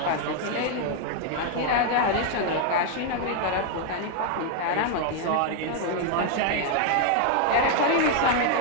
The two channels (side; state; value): both; different; correlation 0.00